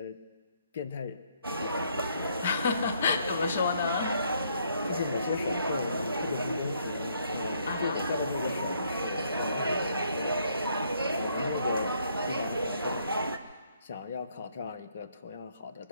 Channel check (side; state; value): both; inverted; correlation -0.70